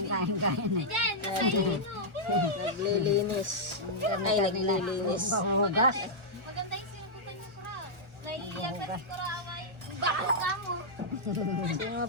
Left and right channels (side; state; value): left; late; 1.4 ms